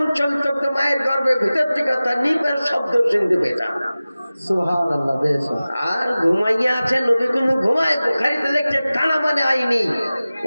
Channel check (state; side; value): inverted; both; correlation -0.97